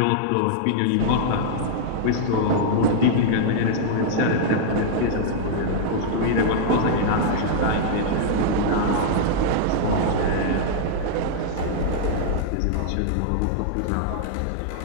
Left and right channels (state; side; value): different; both; correlation -0.01